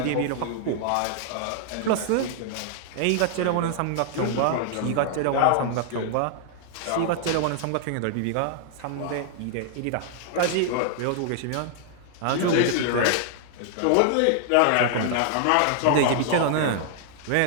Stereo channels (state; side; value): different; both; correlation 0.00